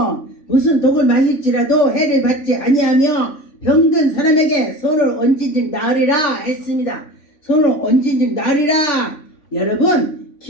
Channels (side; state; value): right; late; 3.5 ms